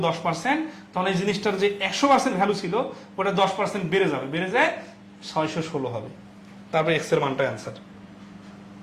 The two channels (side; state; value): both; identical; correlation 1.00